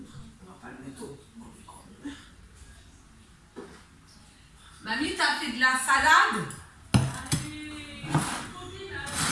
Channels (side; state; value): both; identical; correlation 1.00